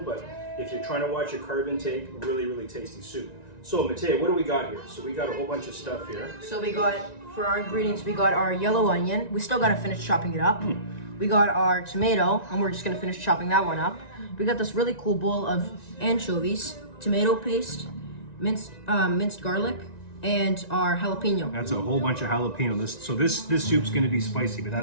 but if you're trying to watch your carb intake, really, really tasty soup. So Mateo, what do we got here? So we got a whole bunch of stuff here. So we got, for our ingredients, we got our yellow onion. We still got to finish chopping it up. We got our tomato, and we're just going to finish chopping that one up. We got this really cool bowl of anchovies, tomato paste, minced garlic, and our jalapeno. That's a whole bunch of jalapeno. This soup's gonna be spicy, but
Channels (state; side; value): late; right; 1.9 ms